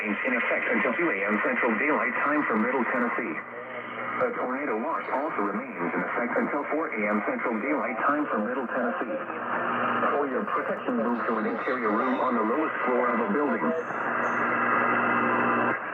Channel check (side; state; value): both; identical; correlation 1.00